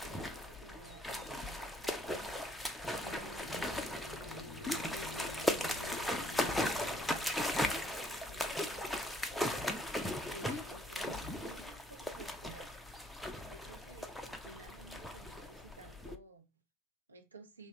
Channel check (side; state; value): both; normal; correlation 0.67